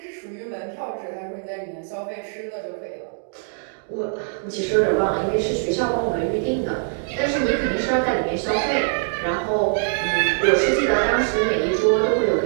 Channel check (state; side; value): silent; left; digital silence